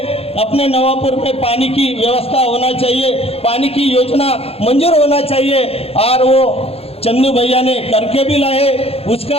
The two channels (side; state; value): right; late; 0.29 ms